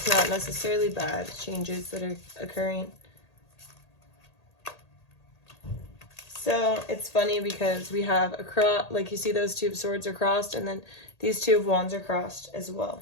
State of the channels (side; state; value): right; late; 1.8 ms